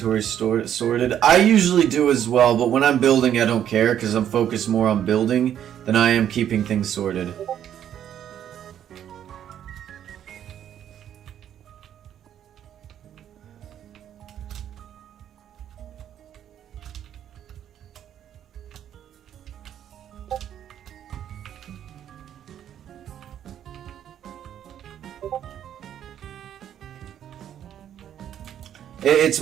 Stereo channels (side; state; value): left; quieter; 10.1 dB